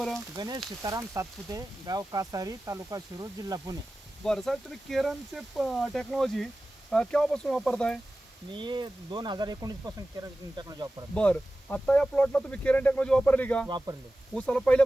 गणेश सीताराम सातपुते, गाव कासारी, तालुका शिरूर, जिल्हा पुणे. बरं साहेब, तुम्ही केरनचे टेक्नॉलॉजी केव्हापासून वापरताय? मी 2019 पासून केरन टेक्नॉलॉजी वापरतो. बरं, आता या प्लॉटला तुम्ही केरन टेक्नॉलॉजी वापरली का? वापरले ऊसाला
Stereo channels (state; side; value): normal; both; correlation 0.95